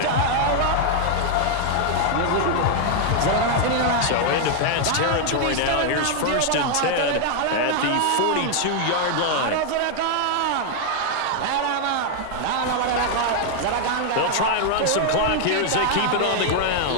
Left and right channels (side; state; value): both; different; correlation 0.00